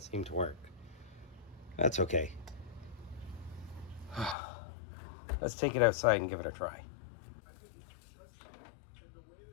to work. That's okay. Let's take it outside and give it a try.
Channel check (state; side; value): drops out; right; at 4.4 s